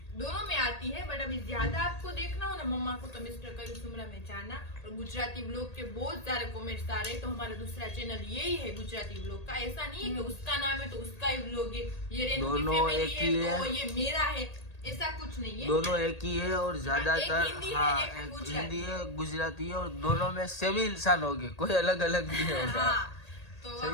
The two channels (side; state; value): right; late; 1.8 ms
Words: दोनों में आती है, बट अभी ज्यादा आपको देखना हो ना मम्मा को तो मिस्टर कयूम सुमरा में जाना। और गुजराती व्लॉग के बहुत सारे कमेंट्स आ रहे हैं, तो हमारा दूसरा चैनल यही है गुजराती व्लॉग का। ऐसा नहीं है कि उसका नाम है तो उसका ही व्लॉग है, ये रेनू की दोनों फैमिली एक ही है तो है। ये मेरा है, ऐसा कुछ नहीं है। दोनों एक ही है और ज्यादातर एक हिंदी है, हाँ एक एक गुजराती। हिंदी है गुजराती है, और दोनों में सेम ही इंसान हो गए, कोई अलग अलग नहीं होगा। हाँ तो आप